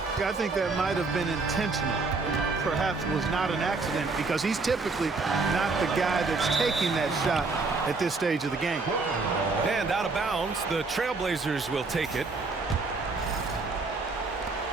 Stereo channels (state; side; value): quieter; left; 3.9 dB